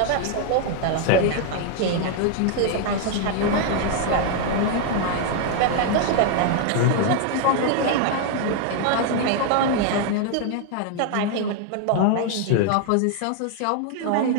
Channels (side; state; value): both; different; correlation 0.00